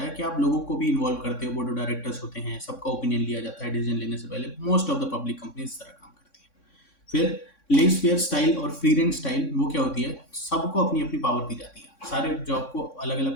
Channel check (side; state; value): right; late; 3.6 ms